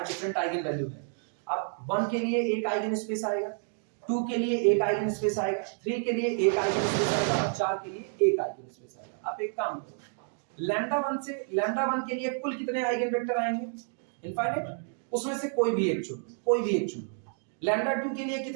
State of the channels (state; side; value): silent; left; 55 dB below the other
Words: डिफरेंट आइगन वैल्यू है। अब 1 के लिए एक आइगन स्पेस आएगा, 2 के लिए एक आइगन स्पेस आएगा, 3 के लिए एक आइगन स्पेस आएगा और 4 के लिए एक आइगन स्पेस आएगा। आप एक काम करो, लैम्डा 1 के लिए कुल कितने आइगन वेक्टर आएंगे, इनफाइनाइट, उसमें से कोई भी एक चुनो। लैम्डा 2 के लिए